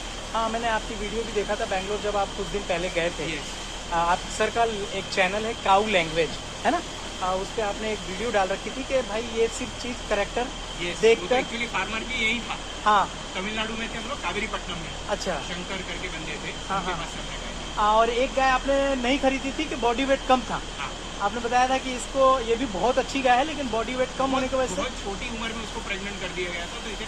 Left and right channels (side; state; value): both; identical; correlation 1.00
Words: हाँ, मैंने आपकी वीडियो भी देखा था बैंगलोर जब आप कुछ दिन पहले गए थे। यस। आप सर का एक चैनल है काऊ लैंग्वेज, है ना? उस पर आपने एक वीडियो डाल रखी थी कि भाई ये सिर्फ चीज़ करेक्टर देखकर। एक्चुअली फार्मर भी यही था। हाँ, तमिलनाडु में थे हम लोग, कावेरीपट्टनम में। अच्छा। शंकर करके बंदे थे। हाँ, उनके हाँ। पास से हमने गए। और एक गाय आपने नहीं खरीदी थी कि बॉडी वेट कम था। हाँ। आपने बताया था कि इसको ये भी बहुत अच्छी गाय है लेकिन बॉडी वेट कम होने की वजह से। बहुत छोटी उम्र में उसको प्रेग्नेंट कर दिया गया था, तो